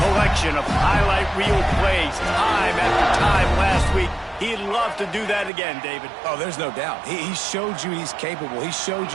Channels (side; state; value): left; drops out; at 5.5 s